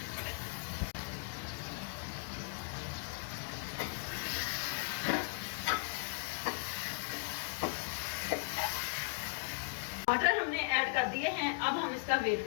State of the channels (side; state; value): right; quieter; 34.8 dB